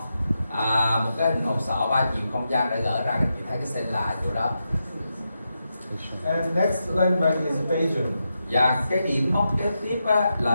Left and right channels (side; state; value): both; inverted; correlation -0.87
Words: một cái hình hộp sọ 3 chiều không gian đã gỡ ra, các chị thấy cái sella ở chỗ đó. And next landmark is Bajon. Và cái điểm mốc kế tiếp á,